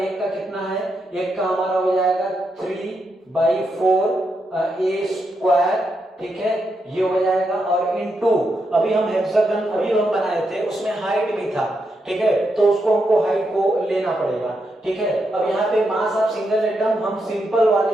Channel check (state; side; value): normal; both; correlation 0.83